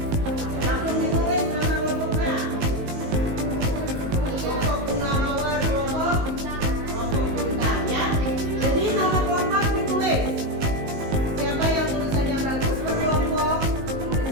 langsung ditulis nama kelompoknya. Kelompok bunga mawar, kelompok bintang ya. Jadi nama kelompok ditulis. Siapa yang tulisannya bagus berkelompok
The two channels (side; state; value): left; late; 19 ms